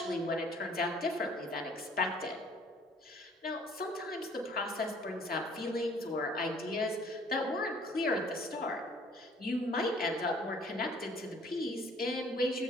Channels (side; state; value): both; normal; correlation 0.56